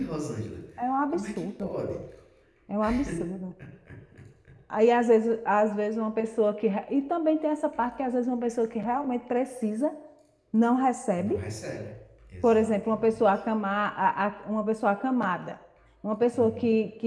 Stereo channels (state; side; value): identical; both; correlation 1.00